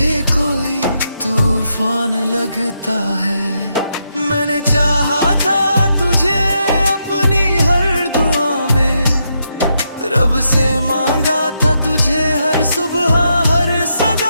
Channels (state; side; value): inverted; both; correlation -0.81